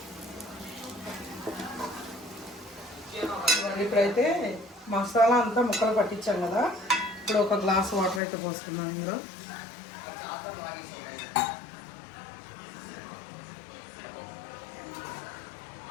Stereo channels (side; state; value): right; drops out; at 8.2 s